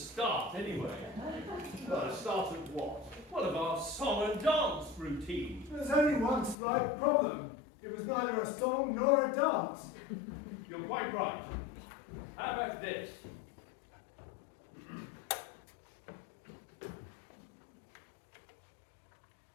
anyway. Well, a start of what? What of our song and dance routine? There's only one slight problem. It was neither a song nor a dance. You're quite right. How about this?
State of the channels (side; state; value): right; drops out; at 6.6 s